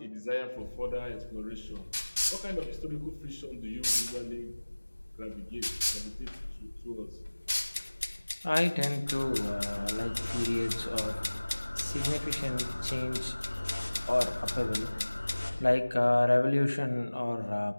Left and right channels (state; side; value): inverted; both; correlation -1.00